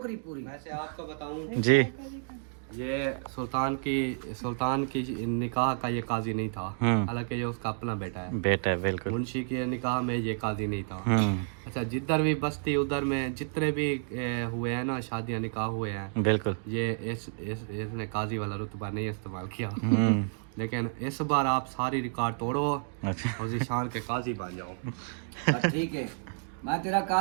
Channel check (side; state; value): left; silent; digital silence